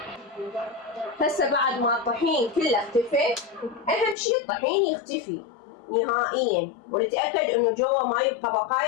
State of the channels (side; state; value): right; drops out; at 4.2 s